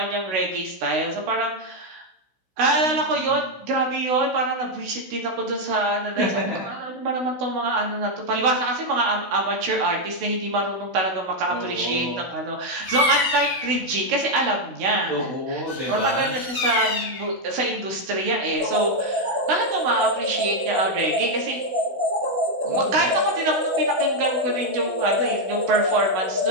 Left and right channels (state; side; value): late; left; 16 ms